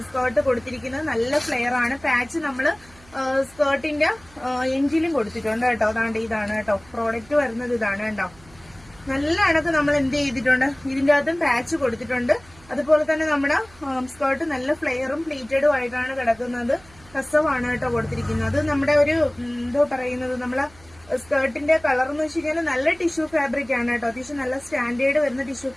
സ്കേർട്ട് കൊടുത്തിരിക്കുന്നത് നല്ല ഫ്ലെയർ ആണ്. പാച്ച് നമ്മള് സ്കേർട്ടിന്റെ എൻജിലും കൊടുത്തിട്ടുണ്ട് കേട്ടോ. അതാണ്ട് ഇതാണ് കേട്ടോ പ്രോഡക്റ്റ് വരുന്നത്. ഇതാണ് കേട്ടോ. നല്ല അണക്ക് നമ്മൾ എന്ത് ചെയ്തിട്ടുണ്ട്, ഇതിന്റെ അകത്തും പാച്ച് കൊടുത്തിട്ടുണ്ട്. അതുപോലെ തന്നെ നമ്മുടെ സ്കേർട്ട് നല്ല ഫ്ലെയറും പ്ലീറ്റഡും ആയിട്ടാണ് കിടക്കുന്നത്. കസവാണ് കേട്ടോ കൊടുത്തിരിക്കുന്നത്. നമ്മുടെ ഒരു എന്തോ പറയുന്നത്, നമ്മളെ സ്കേർട്ടിന്റെ കളർ എന്ന് വെച്ച് കഴിഞ്ഞാൽ നല്ല ടിഷ്യൂ ഫാബ്രിക് ആണ് കേട്ടോ. അത്യാവശ്യം നല്ല സ്റ്റാൻഡേർഡ് വരുന്ന ടിഷ്യൂ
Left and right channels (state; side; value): noise; right; hum, 25 dB below the sound